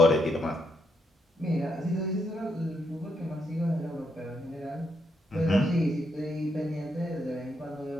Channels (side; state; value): both; normal; correlation 0.78